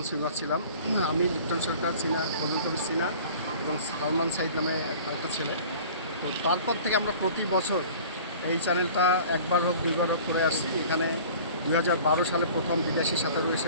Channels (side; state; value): both; inverted; correlation -0.44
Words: সুইমার ছিলাম, আমি লিপ্টন সরকার, ফজল কবির সিনা এবং সালমান সাইদ নামে একটা ছেলে। তো তারপর থেকে আমরা প্রতি বছর এই চ্যানেলটা একবার হোক 2বার হোক করে আসছি। এখানে 2012 সালে প্রথম বিদেশি সাঁতারু